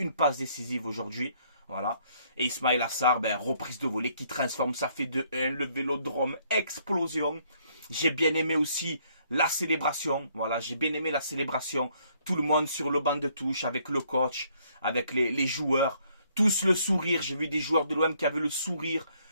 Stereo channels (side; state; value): both; inverted; correlation -0.67